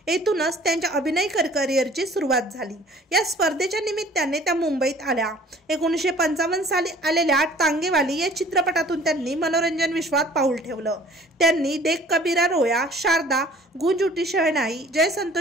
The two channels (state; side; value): normal; both; correlation 0.51